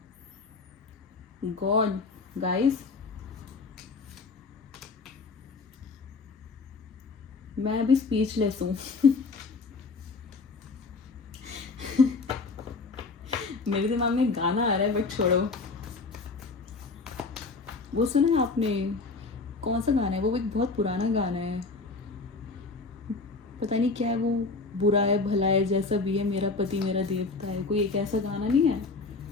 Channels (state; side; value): quieter; right; 4.0 dB